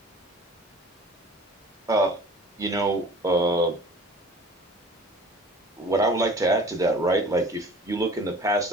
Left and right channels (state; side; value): normal; both; correlation 0.46